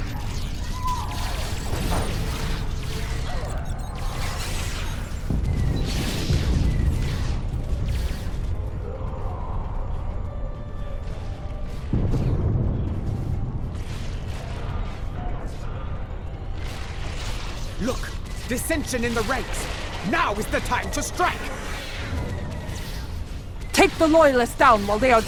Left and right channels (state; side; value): identical; both; correlation 1.00